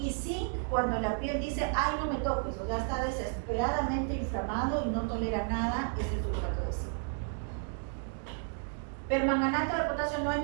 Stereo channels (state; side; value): silent; left; 55 dB below the other